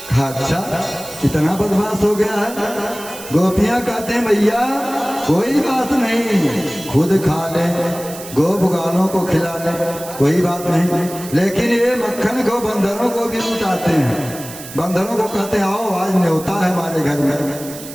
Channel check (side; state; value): right; noise; hiss, 14 dB below the sound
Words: अच्छा इतना बदमाश हो गया है। गोपियाँ कहते हैं भैया कोई बात नहीं, खुद खा ले, गो बुगालों को खिला ले, कोई बात नहीं, लेकिन ये मक्खन को बंदरों को भी लुटाते हैं। बंदरों को कहते हैं आओ आज न्योता है हमारे घर में,